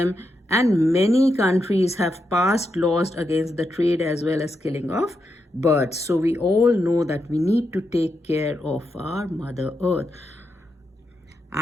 and many countries have passed laws against the trade as well as killing of birds. So we all know that we need to take care of our Mother Earth.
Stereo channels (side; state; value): both; normal; correlation 0.84